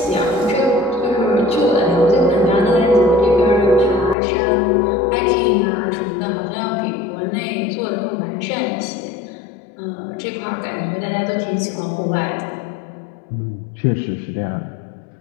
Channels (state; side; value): drops out; right; at 4.2 s